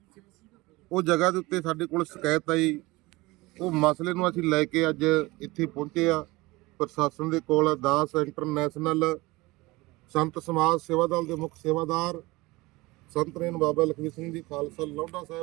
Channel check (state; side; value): quieter; left; 21.6 dB